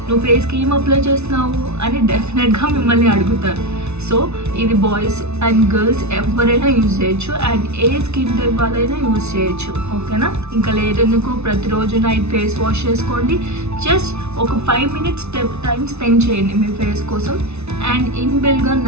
నువ్వు ఫేస్కి ఏం అప్లై చేస్తున్నావు అని డెఫినెట్గా మిమ్మల్ని అడుగుతారు. సో ఇది బాయ్స్ అండ్ గర్ల్స్ ఎవరైనా యూజ్ చేయొచ్చు అండ్ ఏ స్కిన్ టైప్ వాళ్ళైనా యూజ్ చేయొచ్చు, ఓకేనా. ఇంకా లేదెందుకు, ప్రతిరోజు నైట్ ఫేస్ వాష్ చేసుకోండి. జస్ట్ ఒక 5 minutes టైం స్పెండ్ చేయండి మీ ఫేస్ కోసం అండ్ ఇన్బిల్ట్గా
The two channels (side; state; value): left; late; 0.81 ms